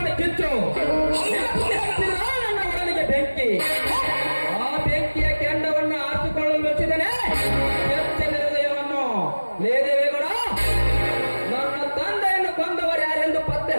ಕಿಚ್ಚು ನೆನಪಿಗೆ ಹಚ್ಚಿದ ನನ್ನ ಒಡಲಿಗೆ ಬೆಂಕಿ. ಆ ಬೆಂಕಿಯ ಕೆಂಡವನ್ನು ಆರಿಸಿಕೊಳ್ಳಲು ಮೆಚ್ಚಿದನೆ ಬೆಚ್ಚನ ಹೃದಯವನ್ನು. ಲೇ ದೇವೇಗೌಡ, ನನ್ನ ತಂದೆಯನ್ನು ಕೊಂದವರು ಯಾರೆಂದು ಪತ್ತೆ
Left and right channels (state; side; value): inverted; both; correlation -1.00